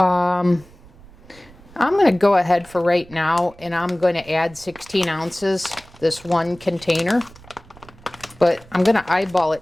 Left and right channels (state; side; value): noise; right; rumble, 23 dB below the sound